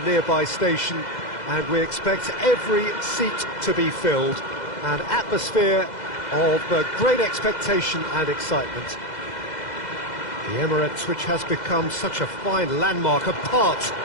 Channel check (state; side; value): late; right; 2.0 ms